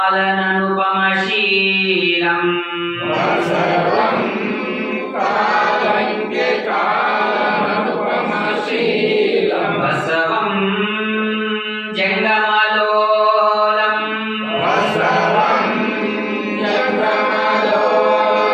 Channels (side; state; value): both; identical; correlation 1.00